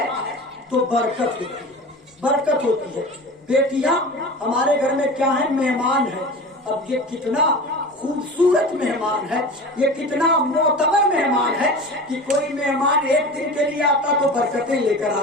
तो बरकत होती है, बरकत होती है। बेटियां हमारे घर में क्या है, मेहमान है। अब ये कितना खूबसूरत मेहमान है, ये कितना मोतबर मेहमान है कि कोई मेहमान 1 दिन के लिए आता तो बरकतें लेकर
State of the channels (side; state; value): both; normal; correlation 0.33